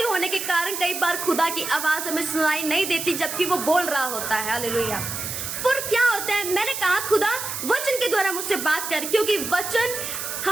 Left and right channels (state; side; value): noise; right; hiss, 5 dB below the sound